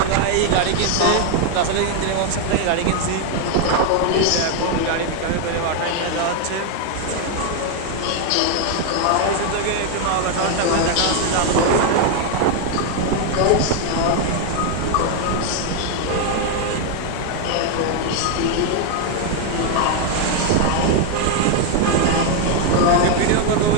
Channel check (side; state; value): both; different; correlation 0.01